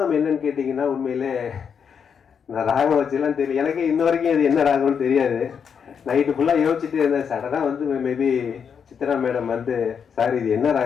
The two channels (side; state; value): right; quieter; 7.0 dB